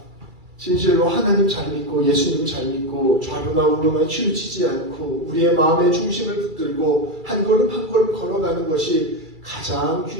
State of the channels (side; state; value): left; late; 2.3 ms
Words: 진실로 하나님 잘 믿고 예수님 잘 믿고 좌로나 우로나 치우치지 않고 우리의 마음의 중심을 붙들고 한 걸음 한 걸음 걸어가는 것이 가장